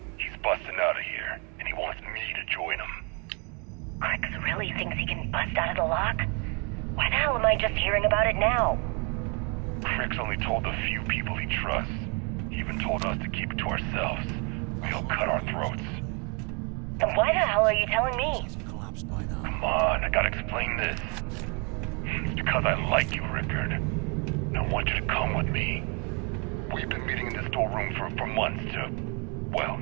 He's busting out of here, and he wants me to join him. Crix really thinks he can bust out of the lock? Why the hell am I just hearing about it now? Crix only told the few people he trusts. He even told us to keep it to ourselves. We'll cut our throats. Then why the hell are you telling me? Come on, I gotta explain this. It's because I like you, Rickard. And I want you to come with me. We've been meeting in this storeroom for months to... well,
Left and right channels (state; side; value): quieter; left; 34.0 dB